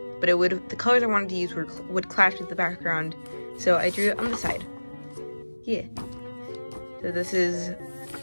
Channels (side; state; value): both; inverted; correlation -1.00